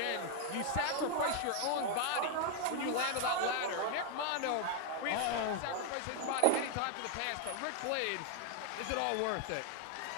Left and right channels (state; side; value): different; both; correlation 0.00